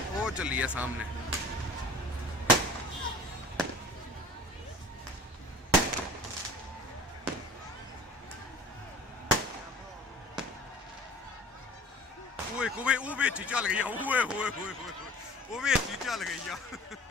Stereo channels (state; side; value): normal; both; correlation 0.45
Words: चली आ सामने। ਉਹ ਵਿੱਚ ਹੀ ਚੱਲ ਗਈ ਓਏ ਹੋਏ ਹੋਏ ਉਹ ਵਿੱਚ ਹੀ ਚੱਲ ਗਈ ਆ।